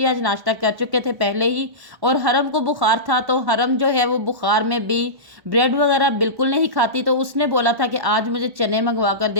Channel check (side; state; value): left; late; 1.1 ms